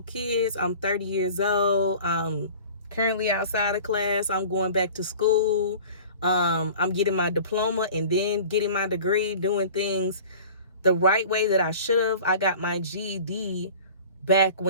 kids. I'm 30 years old. Currently outside of class. I'm going back to school. I'm getting my diploma and then getting my degree, doing things the right way that I should have. I got my GED back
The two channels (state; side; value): inverted; both; correlation -0.42